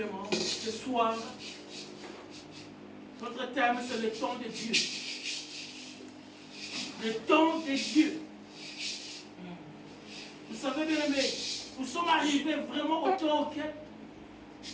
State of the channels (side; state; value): both; identical; correlation 1.00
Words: ce soir, notre thème c'est le temps de Dieu. Le temps de Dieu. Vous savez bien aimé, nous sommes arrivés vraiment au temps auquel